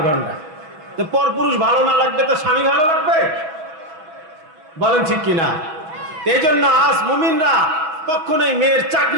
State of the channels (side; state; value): left; late; 6.2 ms